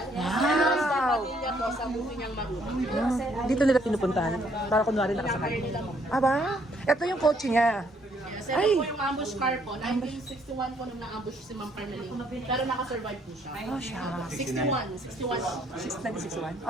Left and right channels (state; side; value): normal; both; correlation 0.67